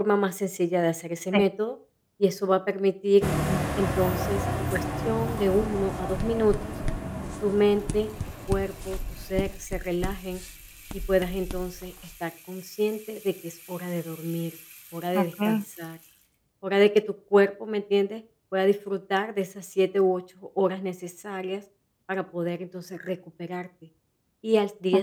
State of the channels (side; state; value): both; identical; correlation 1.00